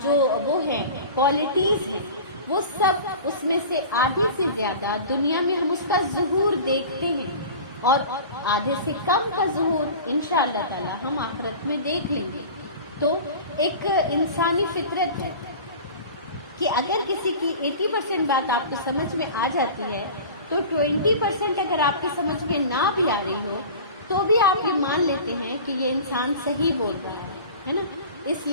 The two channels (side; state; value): both; inverted; correlation -0.37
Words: جو وہ ہیں کوالٹیز ہیں، وہ سب اس میں سے آدھے سے زیادہ دنیا میں ہم اس کا ظہور دیکھتے ہیں، اور آدھے سے کم کا ظہور انشاءاللہ تعالی ہم آخرت میں دیکھ لیں گے. تو ایک انسانی فطرت ہے کہ اگر کسی کی 80% بات آپ کو سمجھ میں آ جاتی ہے تو 20% اگر آپ کی سمجھ میں نہ بھی آ رہی ہو تو بھی آپ یہ مان لیتے ہیں کہ یہ انسان صحیح بول رہا ہے نا. اس